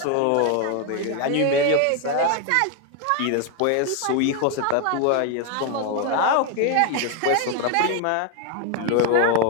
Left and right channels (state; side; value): different; both; correlation 0.01